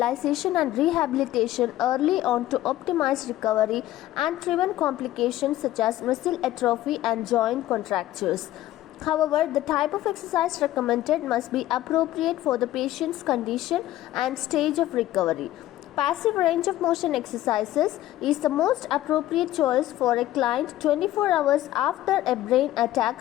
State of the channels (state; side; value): quieter; right; 14.6 dB